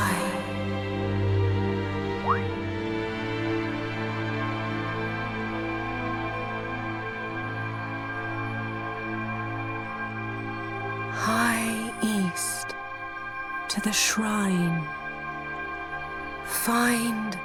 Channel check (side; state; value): both; identical; correlation 1.00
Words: High east to the shrine. Find